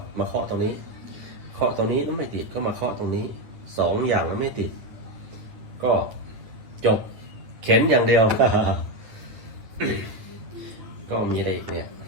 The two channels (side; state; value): left; late; 9.1 ms